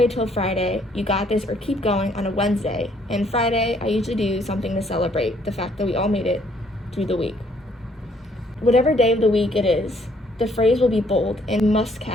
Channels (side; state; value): both; normal; correlation 0.65